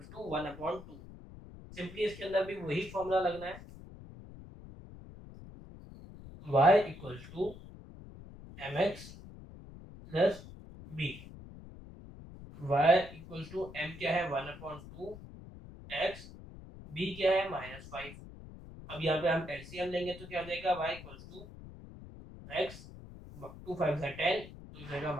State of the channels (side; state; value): left; noise; rumble, 15 dB below the sound